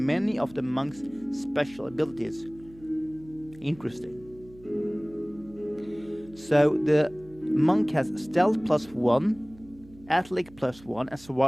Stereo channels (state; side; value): noise; right; hum, 22 dB below the sound